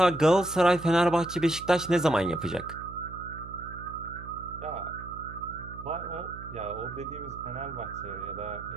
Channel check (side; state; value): right; noise; hum, 14 dB below the sound